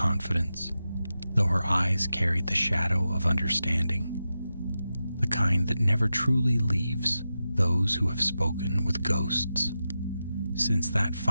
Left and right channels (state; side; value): inverted; both; correlation -0.91